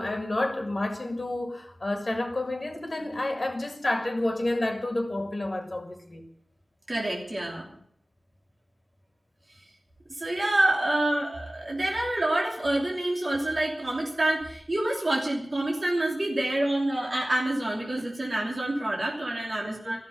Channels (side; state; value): both; normal; correlation 0.97